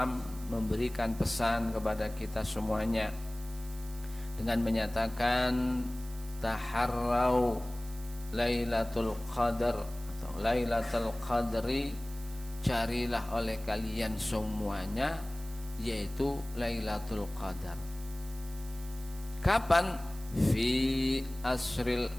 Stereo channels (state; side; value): noise; right; hiss, 18 dB below the sound